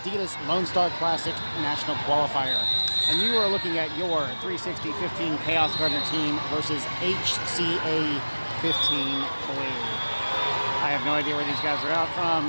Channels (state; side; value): inverted; both; correlation -1.00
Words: Lone Star Classic National Qualifier. And you are looking at your 360-15 Kaos Gardner team versus HCA 15 Blue. I have no idea where these guys are out from.